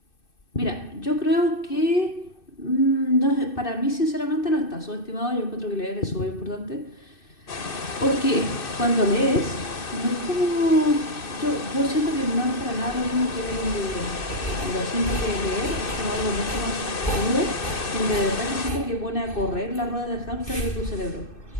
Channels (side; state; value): right; late; 2.6 ms